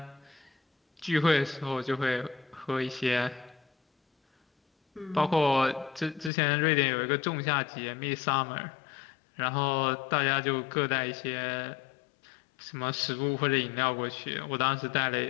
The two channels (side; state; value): right; drops out; at 6.3 s